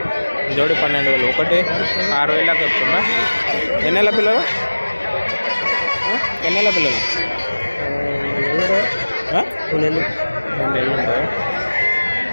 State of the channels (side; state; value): both; inverted; correlation -1.00